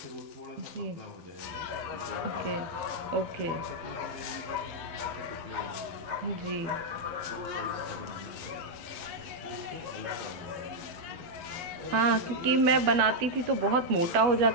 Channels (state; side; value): late; left; 12 ms